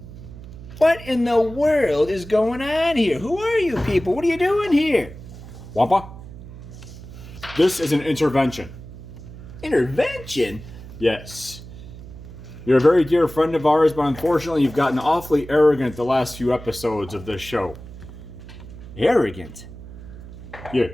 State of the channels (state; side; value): noise; right; hum, 15 dB below the sound